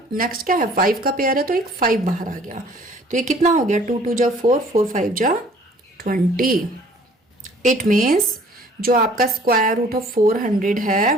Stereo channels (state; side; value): normal; both; correlation 0.54